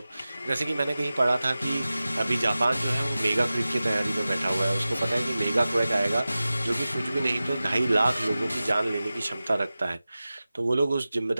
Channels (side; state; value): both; inverted; correlation -0.96